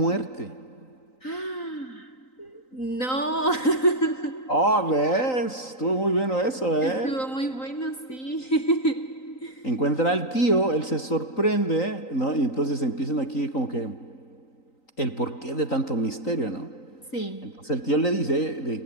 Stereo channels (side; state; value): right; late; 3.9 ms